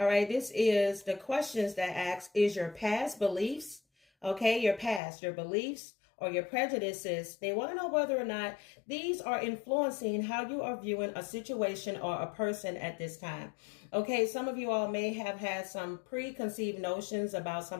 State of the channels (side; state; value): right; drops out; at 5.0 s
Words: right, this is the questions that ask, is your past beliefs, okay, your past, your beliefs, or your prejudices, they want to know whether or not these are influencing how you are viewing a situation or a person at this time. Okay, some of you all may have had some preconceived notions about